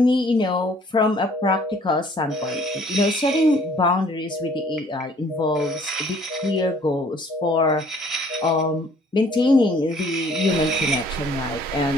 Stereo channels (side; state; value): both; normal; correlation 0.58